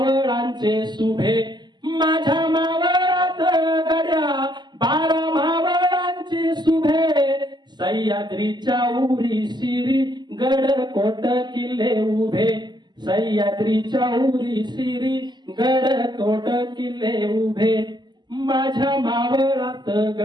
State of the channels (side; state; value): left; late; 0.21 ms